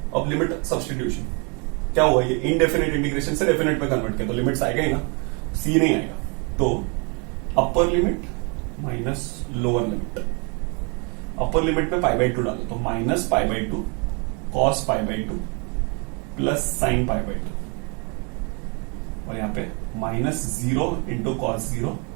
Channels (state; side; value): quieter; left; 34.0 dB